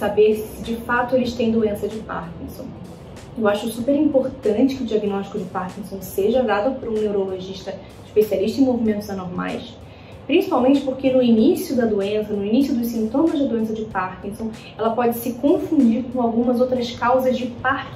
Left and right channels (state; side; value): identical; both; correlation 1.00